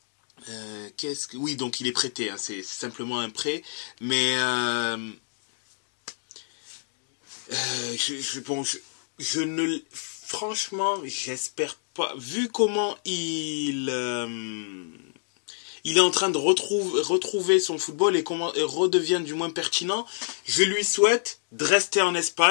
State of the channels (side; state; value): right; silent; digital silence